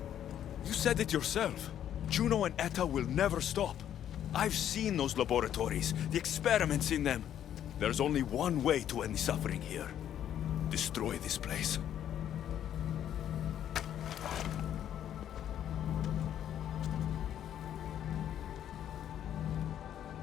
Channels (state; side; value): quieter; right; 10.4 dB